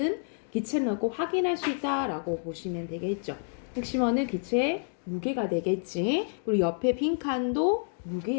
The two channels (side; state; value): right; silent; digital silence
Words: 기체를 넣고 확인할 수 있다라고 보시면 되겠죠. 핵심어는 기체의 무게가 되겠지. 그리고 옆에 빈 칸도